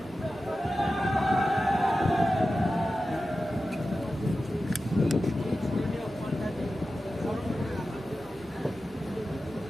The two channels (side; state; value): right; noise; hum, 23 dB below the sound